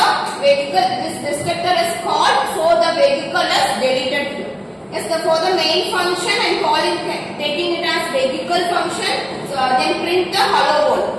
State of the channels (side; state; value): both; identical; correlation 1.00